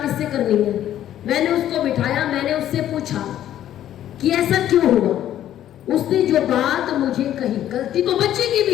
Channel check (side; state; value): right; quieter; 11.7 dB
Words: किससे करनी है। मैंने उसको बिठाया, मैंने उससे पूछा कि ऐसा क्यों हुआ। उसने जो बात मुझे कही, गलती तो बच्चे की